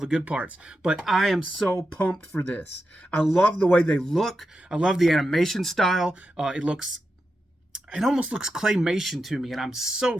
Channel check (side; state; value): both; normal; correlation 0.89